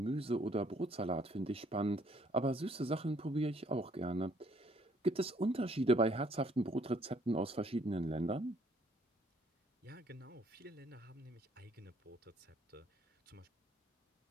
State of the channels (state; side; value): normal; both; correlation 0.65